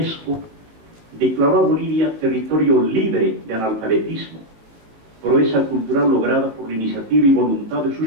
declaró a Bolivia territorio libre de analfabetismo, proeza cultural lograda por la iniciativa y voluntad de sus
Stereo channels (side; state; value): left; late; 18 ms